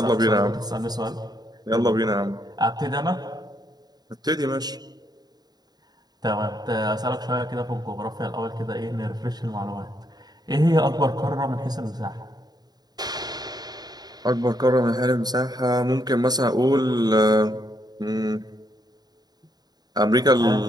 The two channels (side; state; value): left; late; 0.20 ms